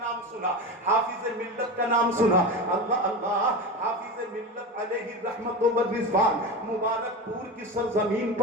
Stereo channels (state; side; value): normal; both; correlation 0.24